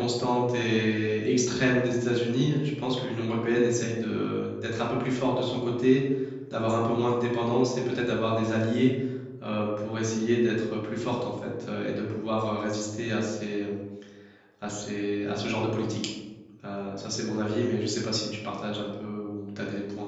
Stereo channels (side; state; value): both; identical; correlation 1.00